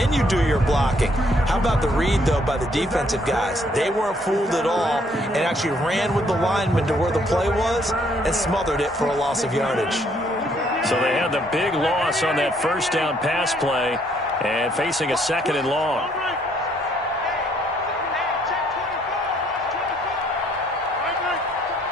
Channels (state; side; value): normal; both; correlation 0.67